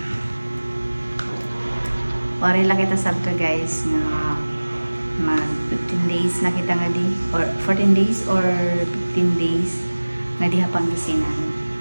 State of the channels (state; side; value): inverted; both; correlation -1.00